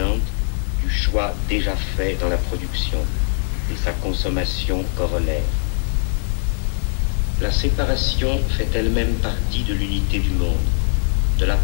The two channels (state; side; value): silent; right; digital silence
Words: du choix déjà fait dans la production et sa consommation corollaire. La séparation fait elle-même partie de l'unité du monde, de la